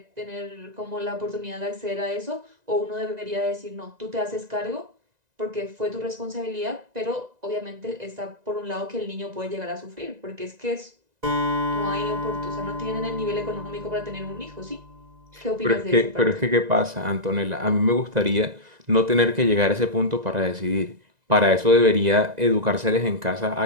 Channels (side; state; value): left; late; 2.0 ms